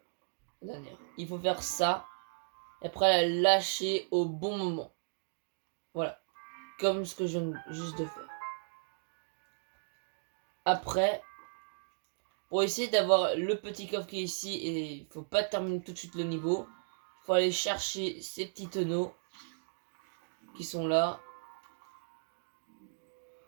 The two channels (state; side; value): silent; left; digital silence